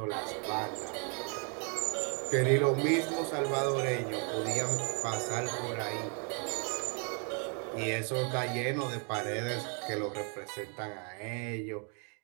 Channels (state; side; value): quieter; left; 39.3 dB